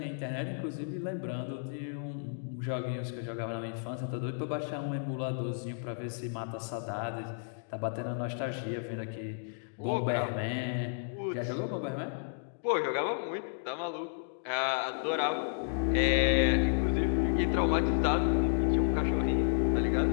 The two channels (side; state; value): right; silent; digital silence